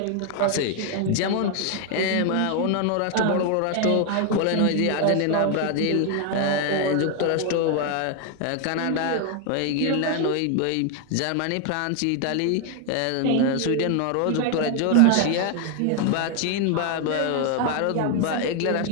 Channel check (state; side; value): different; both; correlation 0.00